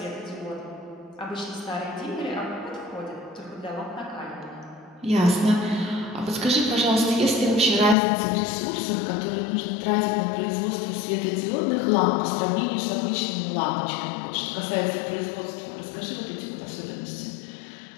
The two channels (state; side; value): drops out; right; at 8.0 s